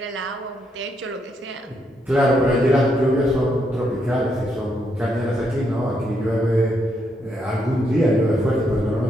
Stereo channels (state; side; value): normal; both; correlation 0.77